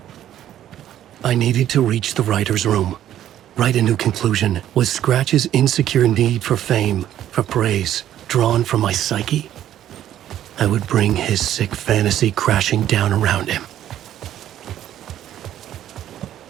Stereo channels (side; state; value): left; quieter; 11.6 dB